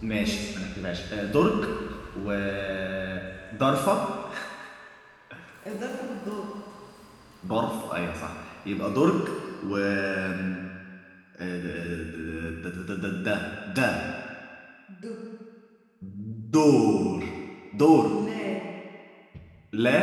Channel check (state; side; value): identical; both; correlation 1.00